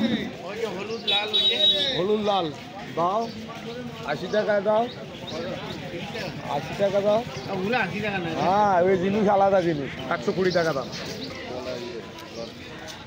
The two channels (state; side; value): identical; both; correlation 1.00